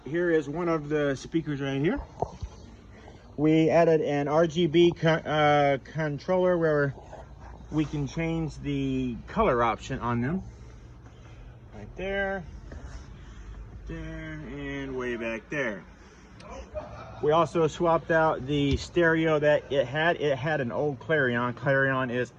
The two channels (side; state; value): both; identical; correlation 1.00